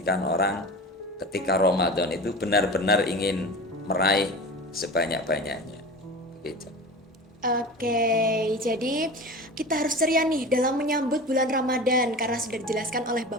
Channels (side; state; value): both; normal; correlation 0.33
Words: orang ketika Ramadan itu benar-benar ingin meraih sebanyak-banyaknya. Begitu. Oke, jadi kita harus ceria nih dalam menyambut bulan Ramadan karena sudah dijelaskan oleh